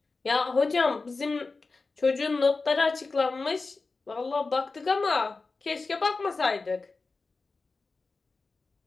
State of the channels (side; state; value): right; quieter; 3.9 dB